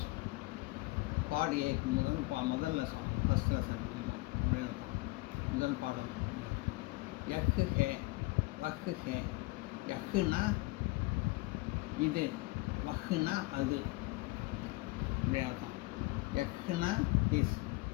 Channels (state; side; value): quieter; right; 22.5 dB